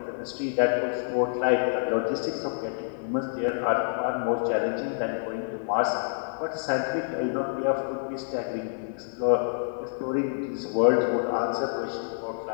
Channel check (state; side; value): silent; right; 60 dB below the other